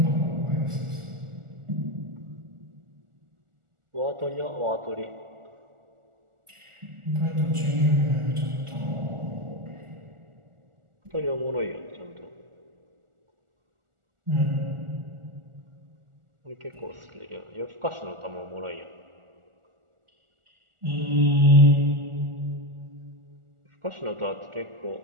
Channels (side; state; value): left; late; 1.4 ms